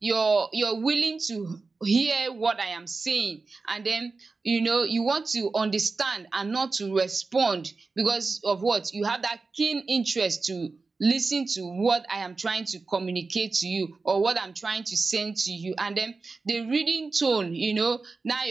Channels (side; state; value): left; quieter; 4.0 dB